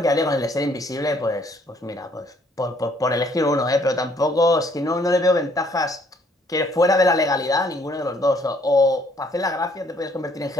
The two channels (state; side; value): normal; both; correlation 0.65